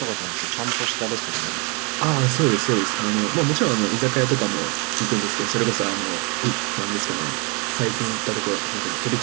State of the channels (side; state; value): left; quieter; 32.1 dB